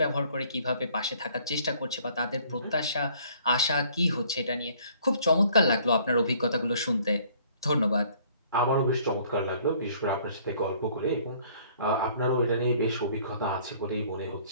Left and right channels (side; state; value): both; inverted; correlation -0.58